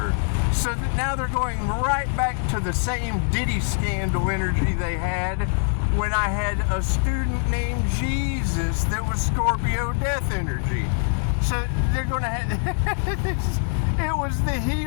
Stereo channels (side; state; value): right; silent; 56 dB below the other